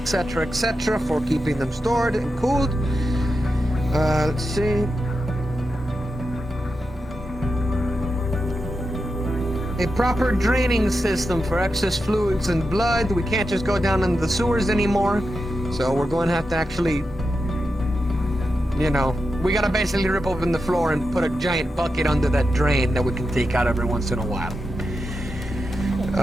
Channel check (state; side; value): normal; both; correlation 0.89